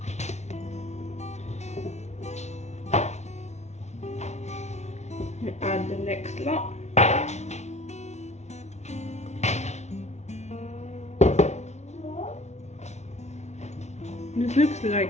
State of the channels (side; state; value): right; late; 0.32 ms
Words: Add the next lot. This looks